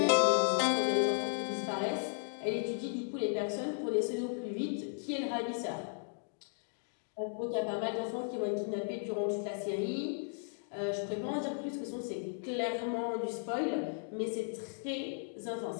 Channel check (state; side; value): silent; right; digital silence